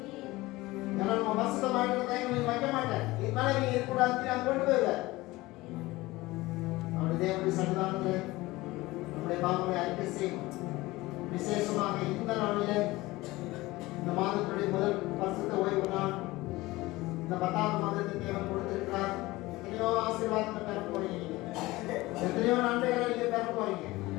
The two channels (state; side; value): quieter; right; 19.7 dB